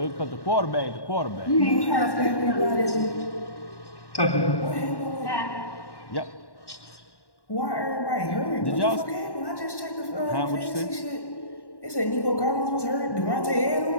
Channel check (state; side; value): late; right; 1.1 ms